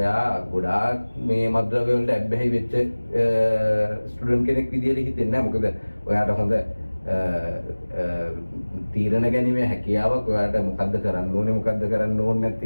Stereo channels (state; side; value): inverted; both; correlation -1.00